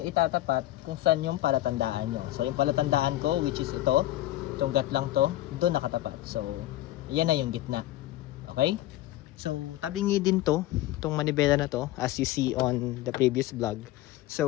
itatapat kung saan yung palatandaan nyo. So, yung palatandaan ko, which is ito, itong gat lang to, dun nakatapat. So, yan na yung gitna. Okay? So, tabingi din to, itong manibela na to, as you see on the previous vlog.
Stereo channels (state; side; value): quieter; right; 15.3 dB